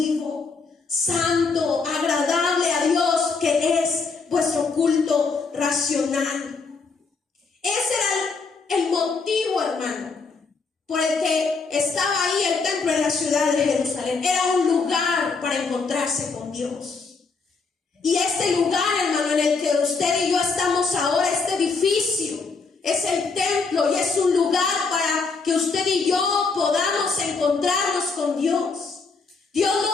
santo, agradable a Dios, que es vuestro culto racional. Ese era el motivo, hermano, por el que estaba ahí el templo en la ciudad de Jerusalén. Era un lugar para encontrarse con Dios. Y este lugar, hermano, en el que usted y yo estamos ahora, este edificio, es el templo y es un lugar para que usted y yo podamos encontrarnos con Dios. Dios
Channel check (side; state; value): right; quieter; 4.5 dB